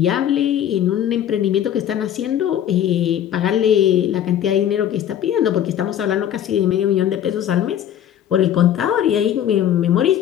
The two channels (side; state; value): right; quieter; 10.4 dB